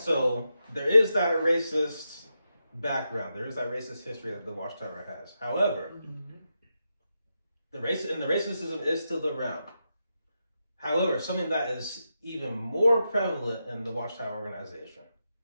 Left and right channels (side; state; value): both; inverted; correlation -0.87